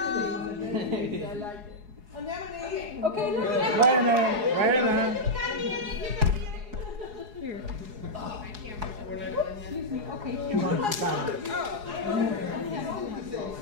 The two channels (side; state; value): left; late; 4.8 ms